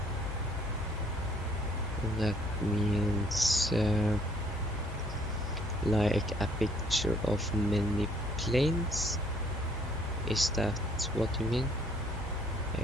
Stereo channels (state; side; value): normal; both; correlation 0.62